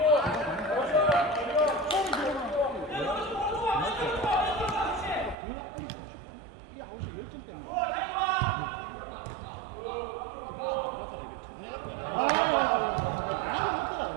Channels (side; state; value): left; drops out; at 5.4 s